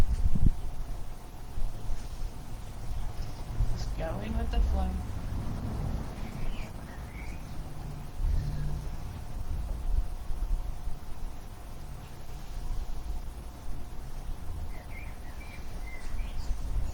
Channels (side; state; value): both; identical; correlation 1.00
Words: Just going with the flow.